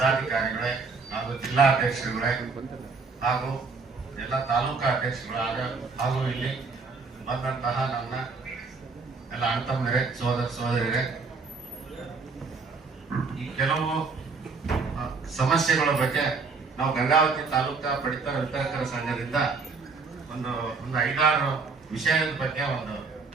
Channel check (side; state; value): left; quieter; 4.5 dB